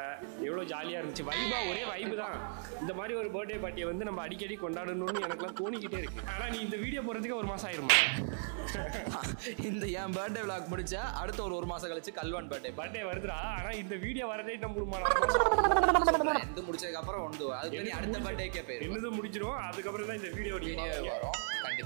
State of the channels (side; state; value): left; silent; digital silence